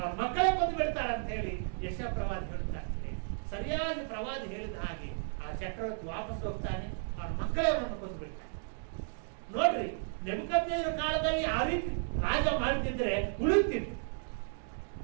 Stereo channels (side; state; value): left; silent; digital silence